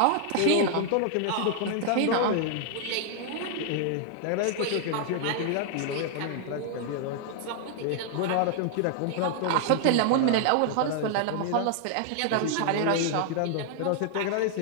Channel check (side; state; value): both; different; correlation 0.00